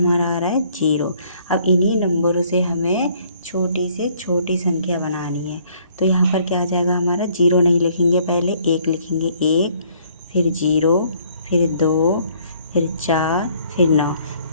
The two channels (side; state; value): both; inverted; correlation -0.62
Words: आ रहा है 0। अब इन्हीं नंबरों से हमें छोटी से छोटी संख्या बनानी है। तो यहाँ पर क्या आ जाएगा हमारा? 0 नहीं लिखेंगे, पहले 1 लिखेंगे। 1, फिर 0, फिर 2, फिर 4, फिर 9।